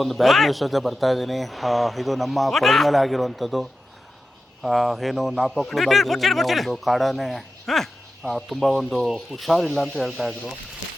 ಒಂದು ಬ್ಯಾಡ್ ನ್ಯೂಸ್ ಜೊತೆ ಬರ್ತಾ ಇದ್ದೀನಿ. ಇದು ನಮ್ಮ ಕೊಡದ ಮೇಲೆ ಆಗಿರುವಂಥದ್ದು. ಏನು ನಾಪಕ್ಲು ಭಾಗದಲ್ಲಿ ಒಂದು ಕಾಡಾನೆ ತುಂಬ ಒಂದು ಹುಷಾರಿಲ್ಲ ಅಂತ ಹೇಳ್ತಾಯಿದ್ರು.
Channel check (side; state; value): both; normal; correlation 0.92